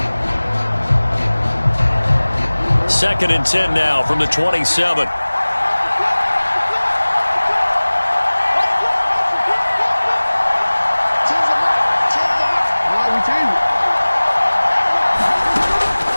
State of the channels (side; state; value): both; inverted; correlation -1.00